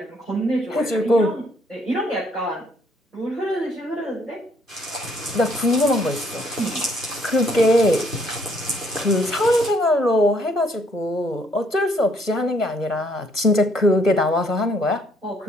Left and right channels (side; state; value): both; normal; correlation 0.67